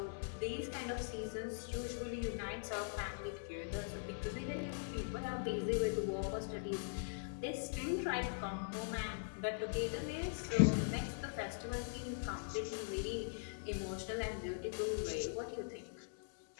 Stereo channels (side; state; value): right; silent; digital silence